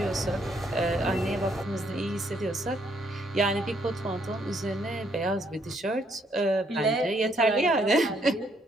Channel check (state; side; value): normal; both; correlation 0.70